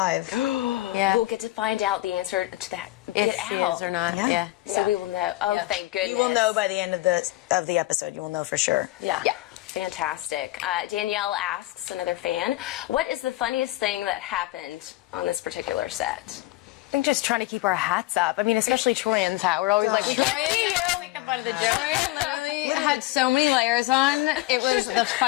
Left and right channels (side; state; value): right; quieter; 18.2 dB